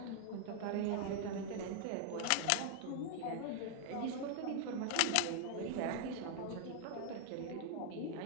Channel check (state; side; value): different; both; correlation 0.00